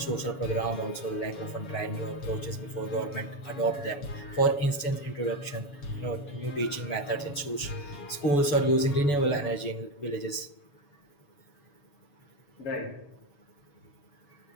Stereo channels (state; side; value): late; right; 7.0 ms